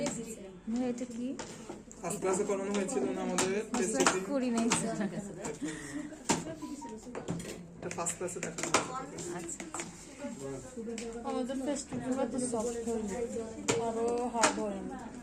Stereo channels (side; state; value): both; identical; correlation 1.00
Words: এটা কি ফার্স্ট ক্লাসে করানো হয়েছিল না আমাদের পেস্ট ক্রিম, করি নাই এটা ফার্স্ট ক্লাসে দেখানো। আচ্ছা আমাদের ফেস্টিভ্যাল তো সফট হয়ে যায়, আরো হার্ড হয় না।